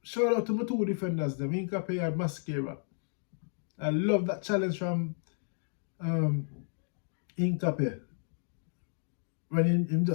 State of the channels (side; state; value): right; silent; digital silence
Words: Shout out to my two defenders, them Incape and Mascara. I love that challenge from Incape. When him